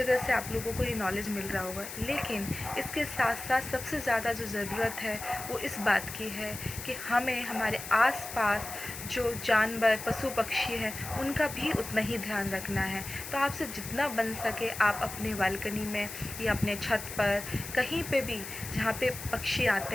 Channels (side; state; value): left; noise; hiss, 10 dB below the sound